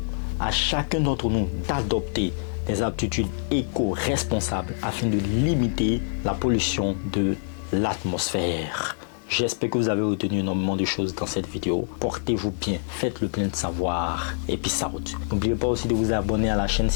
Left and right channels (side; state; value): right; silent; digital silence